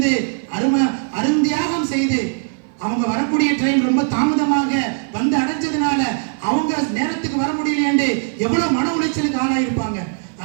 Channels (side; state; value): left; silent; 66 dB below the other